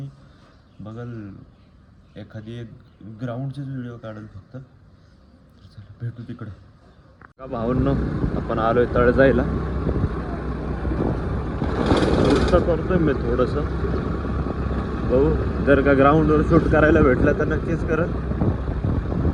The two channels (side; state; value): both; identical; correlation 1.00